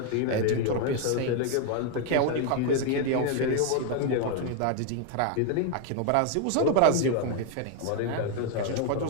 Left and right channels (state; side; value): different; both; correlation 0.00